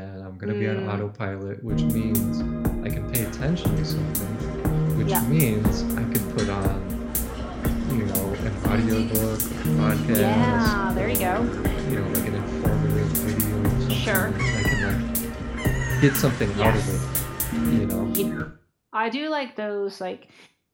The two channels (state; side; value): identical; both; correlation 1.00